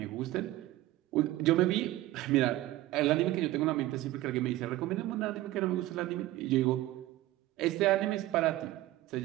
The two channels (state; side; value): quieter; left; 16.3 dB